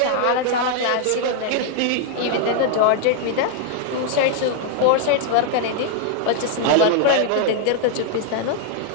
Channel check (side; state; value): both; different; correlation -0.01